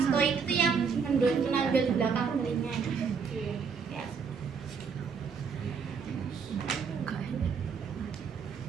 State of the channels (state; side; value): quieter; left; 5.9 dB